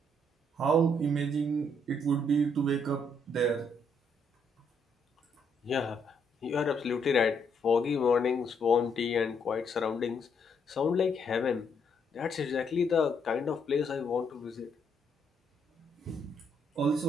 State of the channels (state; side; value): normal; both; correlation 0.73